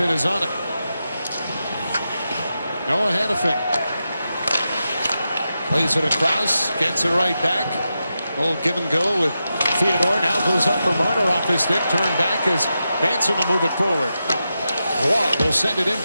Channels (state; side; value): inverted; both; correlation -0.89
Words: is on it. Noah Hannafin plays it across, gets it right back. Old give and go with Theodore. Now goes up for Marner off his stick. Turn back as Manson will move it forward. Roy will send it in